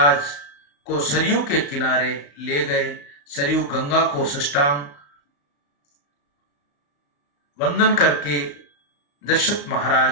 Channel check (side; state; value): right; late; 35 ms